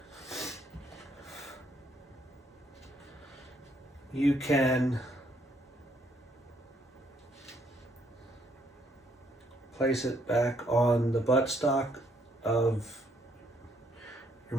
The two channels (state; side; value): normal; both; correlation 0.70